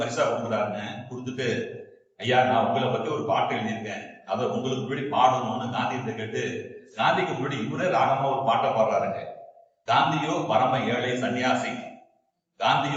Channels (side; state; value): both; identical; correlation 1.00